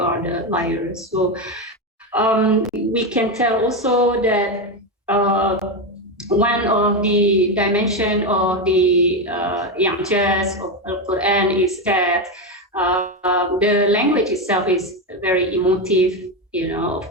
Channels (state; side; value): normal; both; correlation 0.12